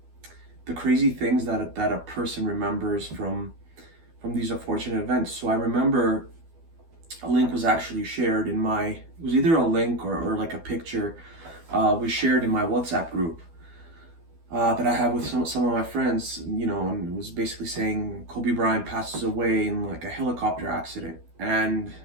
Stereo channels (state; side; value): late; left; 12 ms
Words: crazy things that a person remembers from these unfortunate events. So I remember a link was actually shared in it was either a link or like a picture was shared in my WhatsApp group that I have with some of my friends, and it was basically saying Kobe Bryant passes away in like a helicopter accident. And